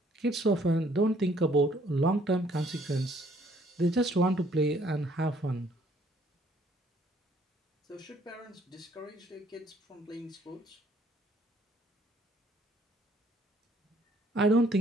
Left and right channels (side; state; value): both; normal; correlation 0.63